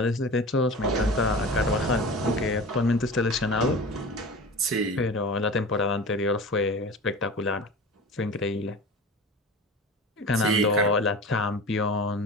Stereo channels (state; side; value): normal; both; correlation 0.34